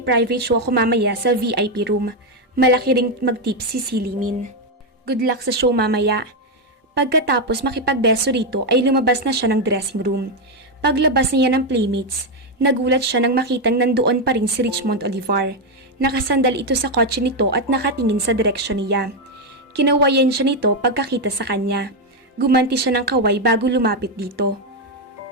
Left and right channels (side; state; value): both; normal; correlation 0.04